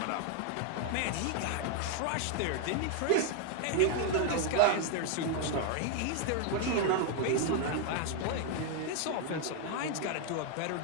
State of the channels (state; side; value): different; both; correlation 0.00